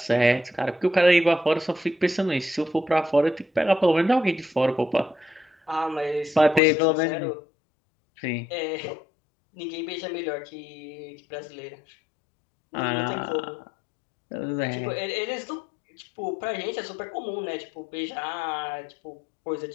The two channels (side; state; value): right; drops out; at 6.6 s